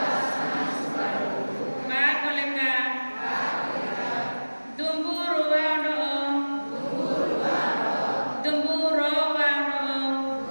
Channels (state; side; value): inverted; both; correlation -1.00